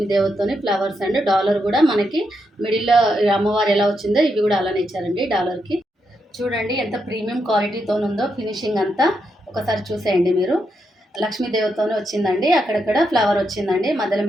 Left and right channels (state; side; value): normal; both; correlation 0.82